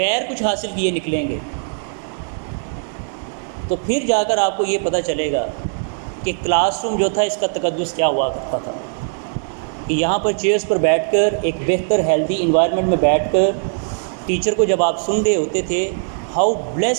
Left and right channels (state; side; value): silent; left; digital silence